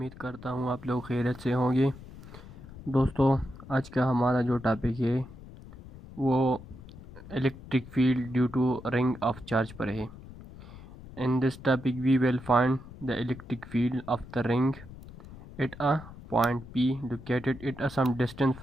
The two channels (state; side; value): noise; left; rumble, 16 dB below the sound